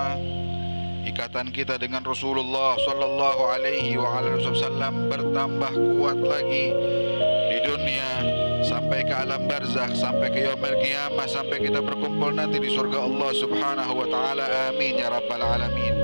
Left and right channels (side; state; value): both; inverted; correlation -1.00